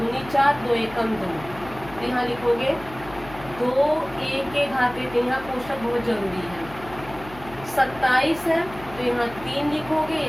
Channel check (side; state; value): left; noise; hum, 16 dB below the sound